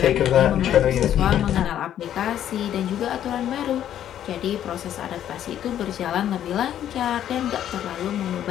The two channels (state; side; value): quieter; right; 10.8 dB